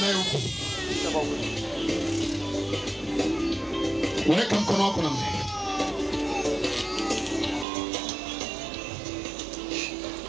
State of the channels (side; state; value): left; drops out; at 7.7 s